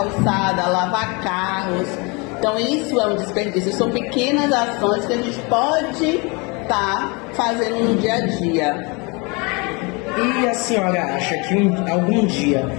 lavar carros. Então isso é um desperdício. São pequenas ações que a gente pode estar fazendo no dia a dia. E a senhora acha que algum dia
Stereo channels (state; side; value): quieter; right; 29.1 dB